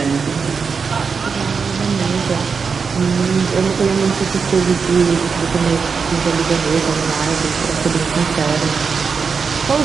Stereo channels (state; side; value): quieter; left; 5.5 dB